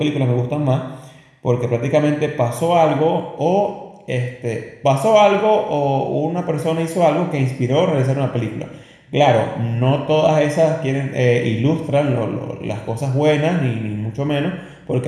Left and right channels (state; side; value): identical; both; correlation 1.00